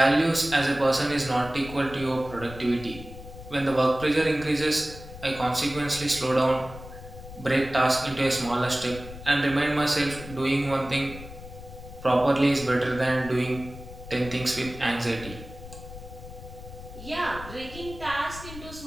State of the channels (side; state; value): left; noise; rumble, 14 dB below the sound